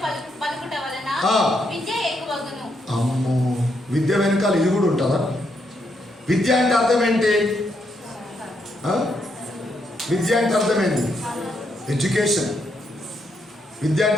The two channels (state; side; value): normal; both; correlation 0.78